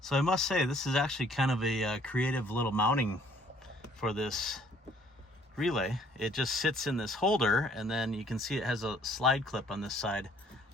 So I must say, this is actually kind of a creative little mounting for this relay. It just sits in this holder, and then you can see it has a slide clip on this side.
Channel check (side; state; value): both; normal; correlation 0.60